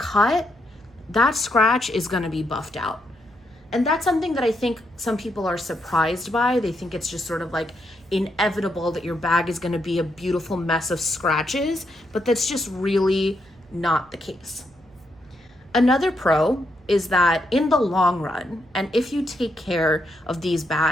that scratch is going to be buffed out. And that's something that I think some people are surprised by. They think it's just sort of like inevitable that your bag is going to be a beautiful mess of scratches, but that's just really not the case. Another pro is that in the long run, and if you take care of these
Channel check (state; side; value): noise; right; hum, 29 dB below the sound